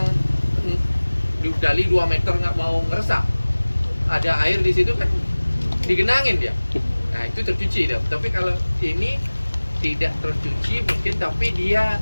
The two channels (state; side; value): inverted; both; correlation -1.00